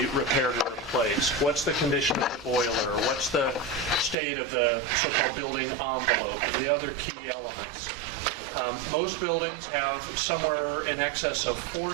repaired or replaced? What's the condition of the boiler? What's the state of the so-called building envelope and the other key elements? Most buildings have somewhere in excess of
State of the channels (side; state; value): left; drops out; at 4.2 s